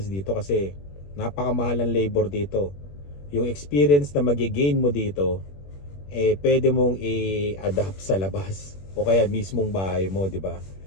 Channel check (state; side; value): late; right; 21 ms